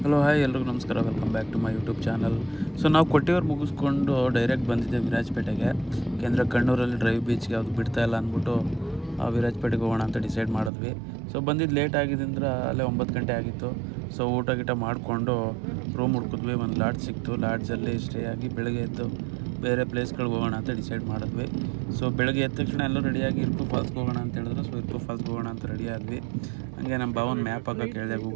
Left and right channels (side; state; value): left; drops out; at 10.7 s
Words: ಹಲೋ ಹಾಯ್ ಎಲ್ರಿಗೂ ನಮಸ್ಕಾರ, welcome back to my YouTube channel. So ನಾವು ಕೊಟ್ಟಿಯೂರು ಮುಗಿಸ್ಕೊಂಡು ಡೈರೆಕ್ಟ್ ಬಂದಿದ್ದೆ ವಿರಾಜಪೇಟೆಗೆ. ಯಾಕೆಂದರೆ ಕಣ್ಣೂರಲ್ಲಿ ಡ್ರೈವ್ ಬೀಚ್ಗೆ ಯಾವುದು ಬಿಡ್ತಾ ಇಲ್ಲ ಅಂದ್ಬಿಟ್ಟು ವಿರಾಜಪೇಟೆಗೆ ಹೋಗೋಣ ಅಂತ ಡಿಸೈಡ್ ಮಾಡಿದ್ವಿ. ಸೊ ಬಂದಿದ್ದು ಲೇಟ್ ಆಗಿದ್ದರಿಂದ ಅಲ್ಲೇ 9 ಗಂಟೆ ಆಗಿತ್ತು. ಸೊ ಊಟ ಗೀಟ ಮಾಡಿಕೊಂಡು ರೂಮ್ ಹುಡ್ಕಿದ್ವಿ. ಒಂದು ಲಾಡ್ಜ್ ಸಿಕ್ತು. ಲಾಡ್ಜಲ್ಲಿ ಸ್ಟೇ ಆಗಿ ಬೆಳಗ್ಗೆ ಎದ್ದು ಬೇರೆ ಪ್ಲೇಸ್ಗಳಿಗೆ ಹೋಗೋಣ ಅಂತ ಡಿಸೈಡ್ ಮಾಡಿದ್ವಿ. ಸೊ ಬೆಳಗ್ಗೆ ಎದ್ದ ತಕ್ಷಣ ಎಲ್ಲರೂ ರೆಡಿಯಾಗಿ ಇರುಪು ಫಾಲ್ಸ್ಗೆ ಹೋಗೋಣ ಅಂತ ಹೇಳಿದ್ರು. ಸೊ ಇರುಪು ಫಾಲ್ಸ್ಗೆ ಹೋಗೋಣ ಅಂತ ರೆಡಿ ಆದ್ವಿ. ಹಂಗೆ ನಮ್ಮ ಭಾವನ ಮ್ಯಾಪ್ ಹಾಕೋಕೆ ಹೇಳಿದೆ,